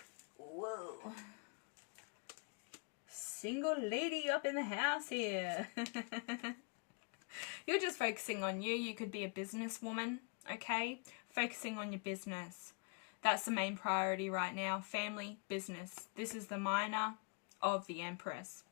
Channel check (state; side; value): quieter; right; 36.5 dB